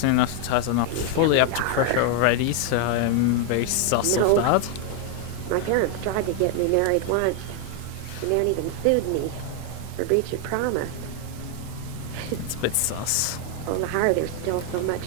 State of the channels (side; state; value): both; different; correlation 0.00